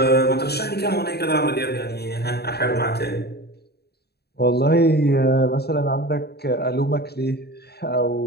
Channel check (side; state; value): right; late; 0.47 ms